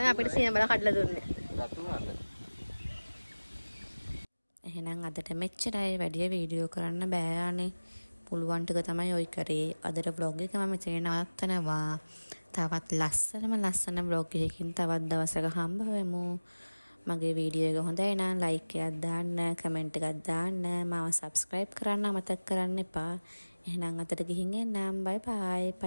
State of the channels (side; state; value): both; inverted; correlation -1.00